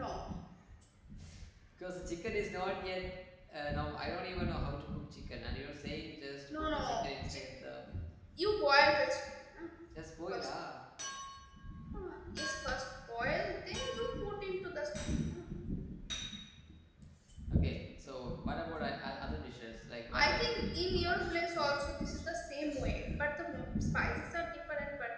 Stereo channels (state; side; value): identical; both; correlation 1.00